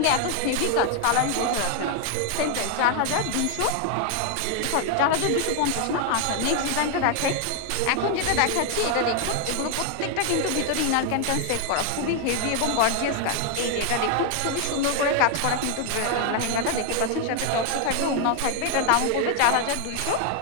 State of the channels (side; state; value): both; different; correlation 0.01